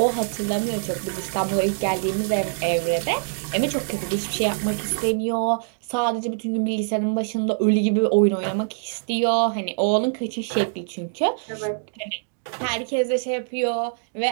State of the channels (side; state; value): left; silent; digital silence